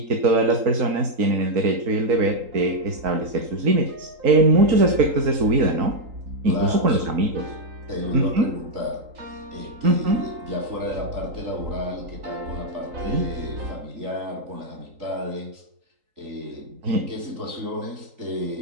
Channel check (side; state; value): left; late; 3.8 ms